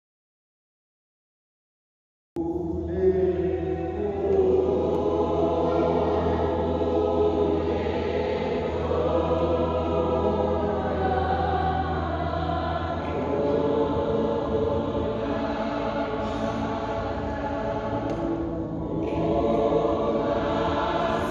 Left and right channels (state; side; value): identical; both; correlation 1.00